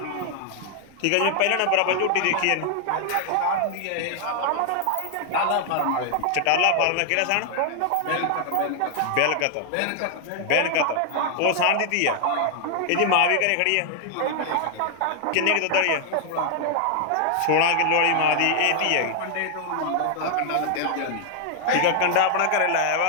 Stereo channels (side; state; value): both; different; correlation 0.00